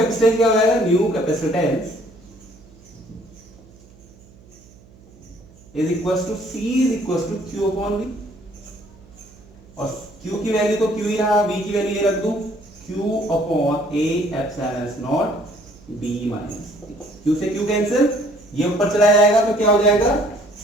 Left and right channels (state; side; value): noise; right; hum, 25 dB below the sound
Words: क्या हो जाएगा, new capacitance is equals to C is equals to Q upon V, और Q की value तो Q ही रहा, V की value ये रख दूं, Q upon A epsilon not B minus, Q से Q कैंसिल, ये ऊपर चला जाएगा तो क्या हो जाएगा,